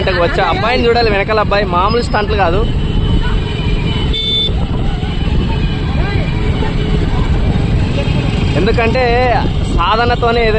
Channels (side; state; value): both; identical; correlation 1.00